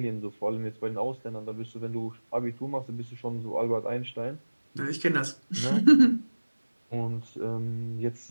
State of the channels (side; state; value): both; inverted; correlation -1.00